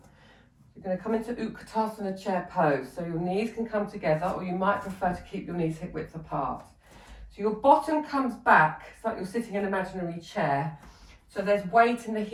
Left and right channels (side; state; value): both; identical; correlation 1.00